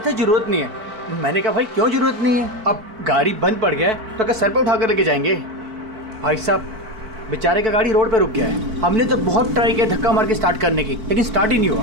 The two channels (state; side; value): late; left; 4.5 ms